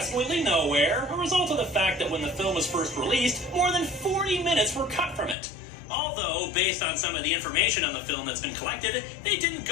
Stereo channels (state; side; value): drops out; right; at 5.4 s